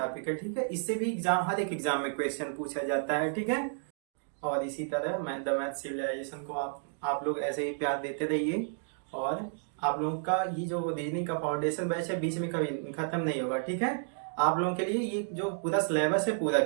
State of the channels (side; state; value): left; silent; digital silence